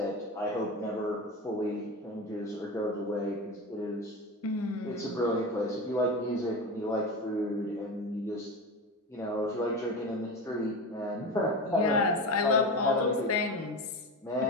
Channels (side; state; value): both; normal; correlation 0.24